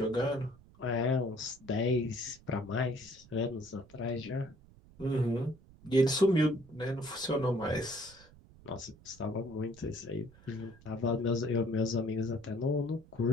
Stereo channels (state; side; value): noise; right; rumble, 23 dB below the sound